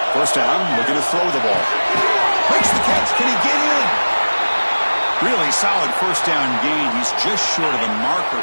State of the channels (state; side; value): inverted; both; correlation -1.00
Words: First down, looking to throw the ball. Makes the catch. Can he get in? Really solid first down gain. He's just short of the marker,